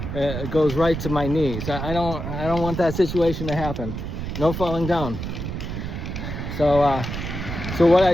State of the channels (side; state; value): right; noise; rumble, 5 dB below the sound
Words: goes right to my knees. I don't want that situation to happen. No falling down. So what